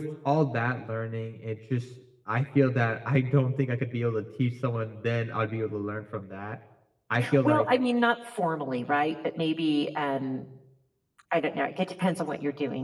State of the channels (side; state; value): both; identical; correlation 1.00